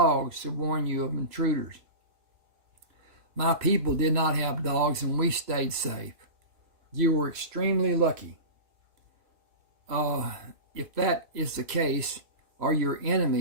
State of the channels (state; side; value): late; left; 3.0 ms